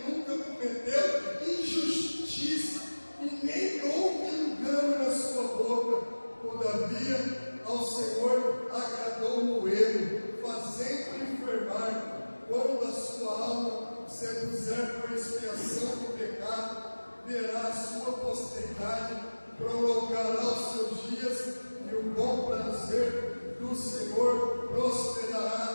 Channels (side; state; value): both; inverted; correlation -1.00